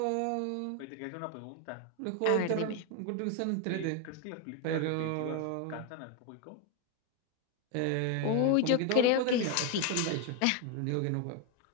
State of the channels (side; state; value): both; different; correlation 0.01